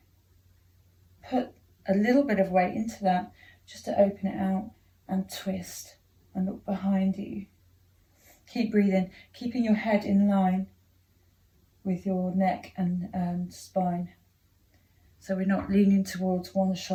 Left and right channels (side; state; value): both; identical; correlation 1.00